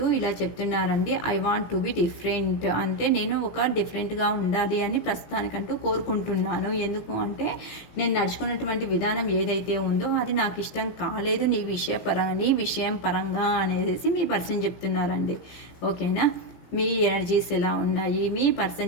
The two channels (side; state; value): right; late; 17 ms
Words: ఇలా చెప్తున్నారండి. I want to be different అంటే నేను ఒక డిఫరెంట్గా ఉండాలి అని ప్రస్తుతానికంటూ కోరుకుంటున్నాను. ఎందుకు అంటే నేను నడుచుకున్నటువంటి విధానం ఏదైతే ఉందో అది నాకు ఇష్టం కాలేదు నీ విషయం పరంగా అనేసి మీ పర్సన్ చెప్తున్నారండి. ఓకేనా, మీ ఎనర్జీస్ ఎలా ఉన్నాయి, మీ